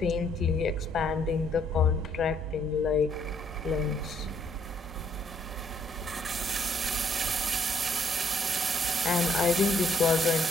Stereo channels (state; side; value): normal; both; correlation 0.68